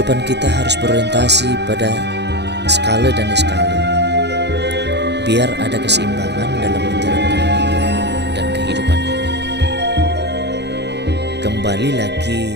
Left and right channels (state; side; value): late; left; 0.50 ms